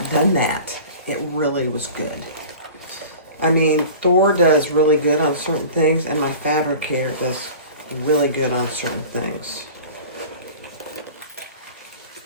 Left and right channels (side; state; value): both; inverted; correlation -0.39